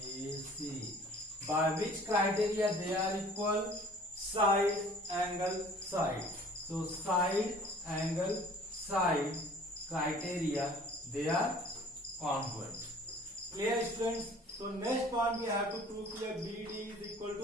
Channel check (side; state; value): both; normal; correlation 0.50